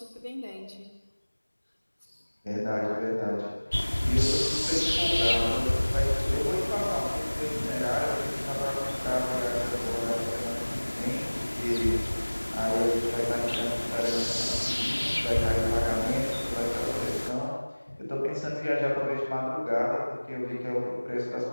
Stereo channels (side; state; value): both; inverted; correlation -1.00